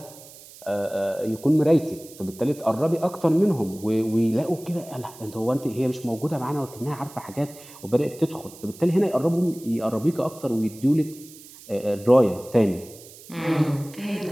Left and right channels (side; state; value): right; noise; hiss, 19 dB below the sound